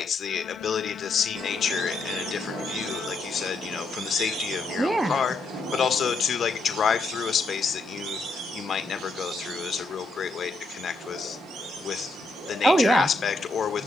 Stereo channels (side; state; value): right; quieter; 3.3 dB